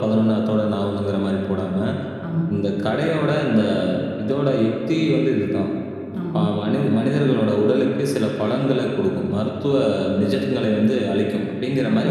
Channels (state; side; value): identical; both; correlation 1.00